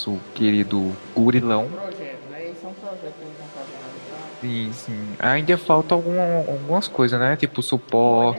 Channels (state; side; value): inverted; both; correlation -1.00